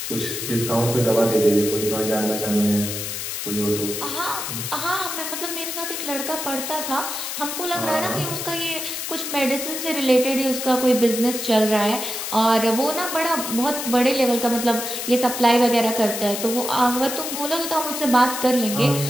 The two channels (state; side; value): noise; left; hiss, 5 dB below the sound